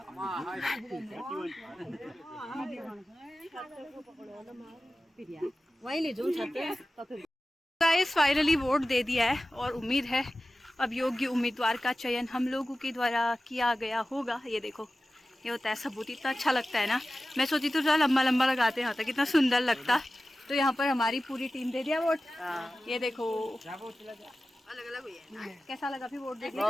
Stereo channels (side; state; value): both; normal; correlation 0.95